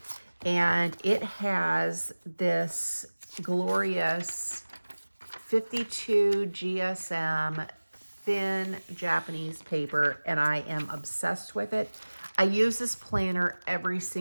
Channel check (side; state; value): both; inverted; correlation -1.00